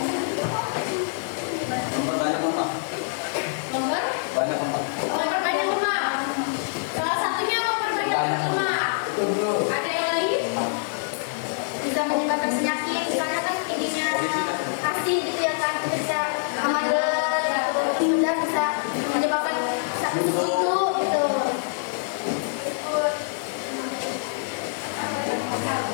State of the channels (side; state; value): right; silent; digital silence